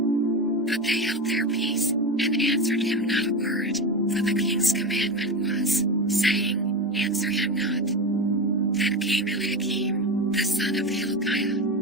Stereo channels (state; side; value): normal; both; correlation 0.20